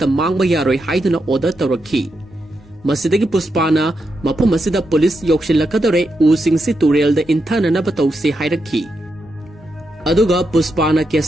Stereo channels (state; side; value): normal; both; correlation 0.84